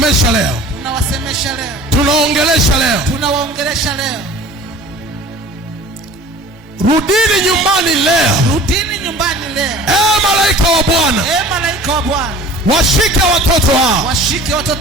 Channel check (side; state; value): both; normal; correlation 0.44